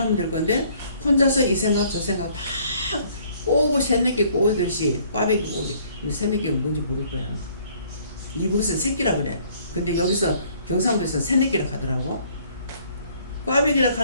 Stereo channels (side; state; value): both; inverted; correlation -0.60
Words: 될 건데 혼자서 이 생각 저 생각 다 꼬고 새내기 꼬듯이 꽈배기 꼬듯이 새내기가 뭔지 모를 거야. 이북에서 새끼라 그래. 근데 여기서 경상도에서 새내끼라 하더라고. 꽈배기라